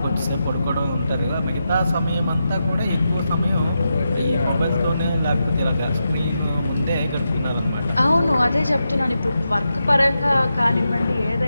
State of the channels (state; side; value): inverted; both; correlation -0.87